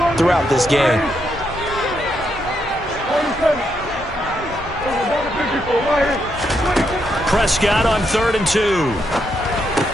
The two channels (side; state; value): both; normal; correlation 0.79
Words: throughout this game. Prescott on 3rd and 2.